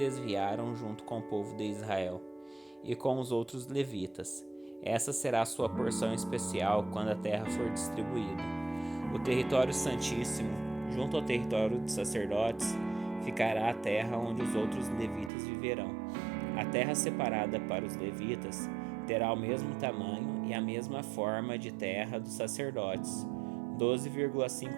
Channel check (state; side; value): drops out; left; at 15.3 s